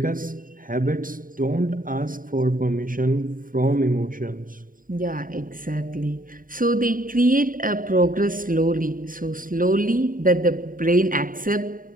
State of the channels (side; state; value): left; late; 0.40 ms